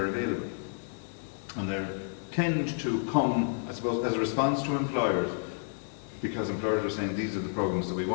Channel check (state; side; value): silent; right; digital silence